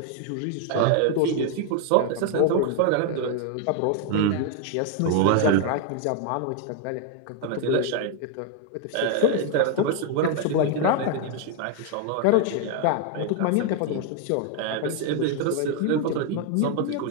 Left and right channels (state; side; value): different; both; correlation 0.00